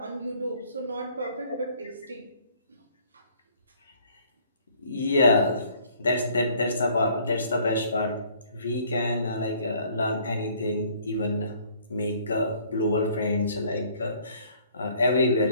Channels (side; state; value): both; inverted; correlation -0.59